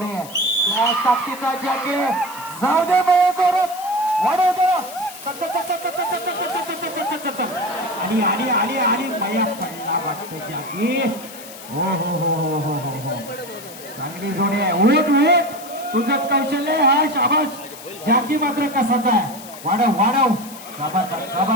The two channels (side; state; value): left; noise; hiss, 16 dB below the sound